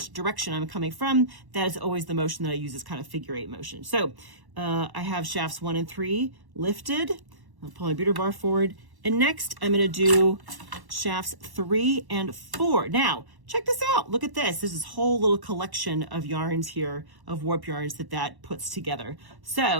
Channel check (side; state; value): left; late; 1.1 ms